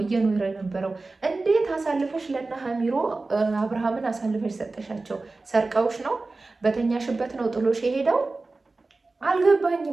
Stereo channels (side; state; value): left; quieter; 3.5 dB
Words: እየኖረ የነበረው። እንዴት አሳልፈሽ ለና ሀሚሮ አብርሃምን አሳልፈሽ ሰጠሻቸው? ሰርቀውሽ ነው? በተኛሽበት ነው ጥሎሽ የሄደው?